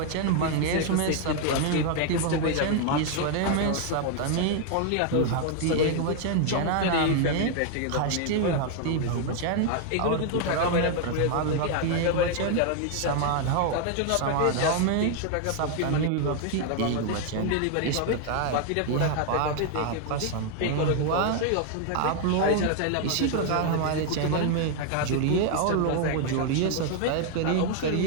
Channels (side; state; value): both; different; correlation 0.00